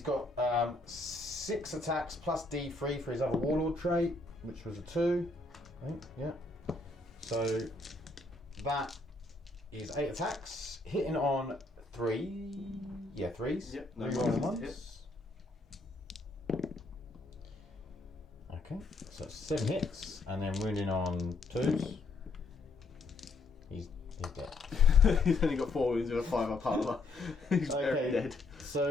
got 6 attacks plus D3 for his other Warlord trait, which was a 2. I think, yeah. So that is 8 attacks, hitting on 3. Yeah, 3s. Yep. No rolling ones. Okay, so 7 hits, and then wounding on 2s. He's dead. He's only got 4 wounds with a 5 up armor. He's very dead.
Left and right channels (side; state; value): right; quieter; 3.3 dB